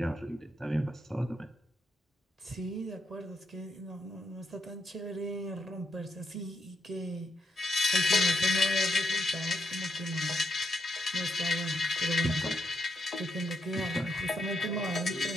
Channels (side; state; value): both; normal; correlation 0.81